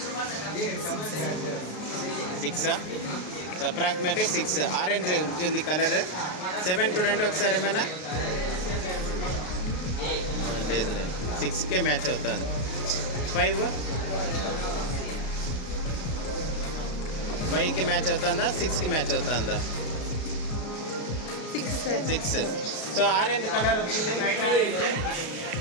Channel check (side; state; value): right; late; 33 ms